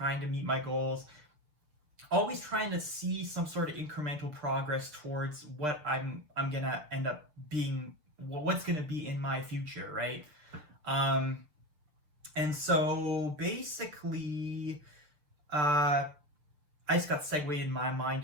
to meet my goals, always trying to see some sort of incremental progress towards what I'm gonna end up being, what's gonna be in my future, right? And so basically, I just got segued in my mind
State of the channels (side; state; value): left; late; 6.7 ms